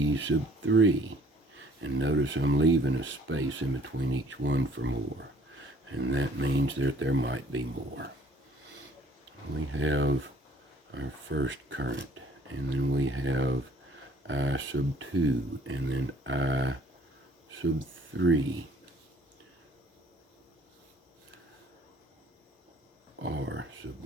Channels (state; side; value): normal; both; correlation 0.58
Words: sub 3. And notice I'm leaving a space in between each one for more. And that means that there might be more. We have our first current, and then we have I sub 2, and then I sub 3. R sub